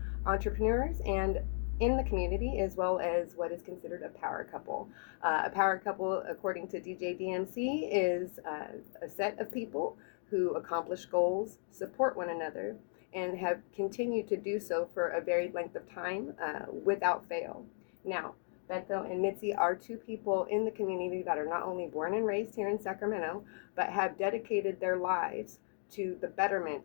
entrepreneurs and in the community, as well as what is considered a power couple. A power couple, according to DJ DMC, is a set of people who accomplish goals, support one another, and have continued to do so for a varied length of time without fail. Now, Beto and Mitzi are two people in the community that are not only born and raised here in Sacramento, but have dedicated their lives to the betterment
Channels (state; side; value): silent; right; 54 dB below the other